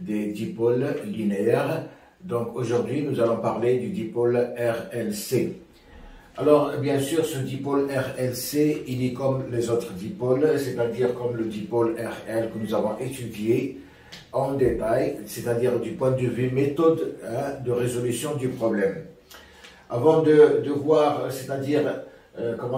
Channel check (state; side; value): identical; both; correlation 1.00